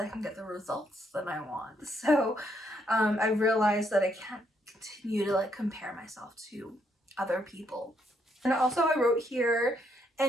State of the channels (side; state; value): both; normal; correlation 0.74